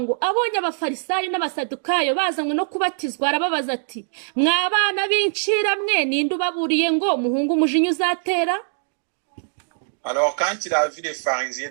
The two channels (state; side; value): silent; left; digital silence